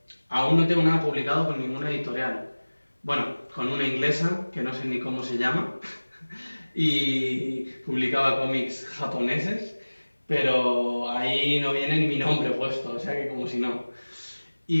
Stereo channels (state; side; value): inverted; both; correlation -1.00